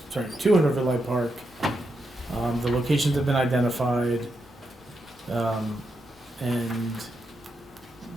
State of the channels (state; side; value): normal; both; correlation 0.84